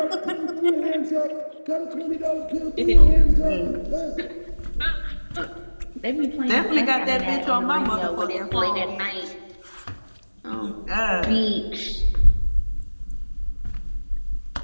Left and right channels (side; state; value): both; inverted; correlation -1.00